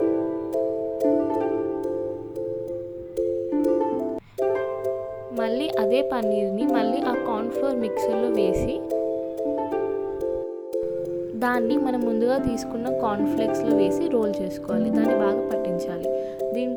మళ్ళీ అదే పన్నీర్ని మళ్ళీ ఆ కార్న్ఫ్లోర్ మిక్సర్లో వేసి దాన్ని మనం ముందుగా తీసుకున్న కార్న్ఫ్లేక్స్లో వేసి రోల్ చేసుకోవాలి. దాన్ని బాగా పట్టించాలి.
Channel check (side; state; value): both; identical; correlation 1.00